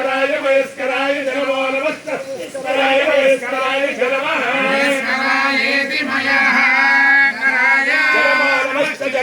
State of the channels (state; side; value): identical; both; correlation 1.00